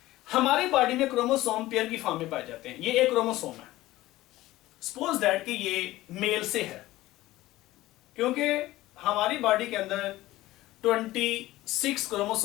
हमारी बॉडी में क्रोमोसोम पेयर की फॉर्म में पाए जाते हैं। ये एक क्रोमोसोम है, सपोज दैट कि ये मेल से है, क्योंकि हमारी बॉडी के अंदर 26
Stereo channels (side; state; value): right; quieter; 16.9 dB